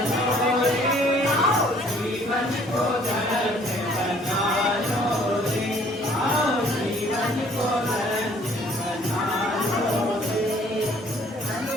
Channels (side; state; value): both; normal; correlation 0.58